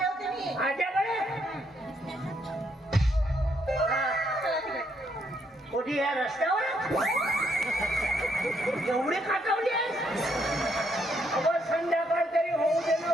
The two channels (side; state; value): both; normal; correlation 0.73